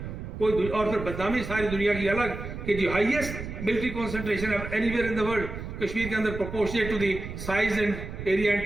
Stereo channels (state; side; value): noise; right; rumble, 8 dB below the sound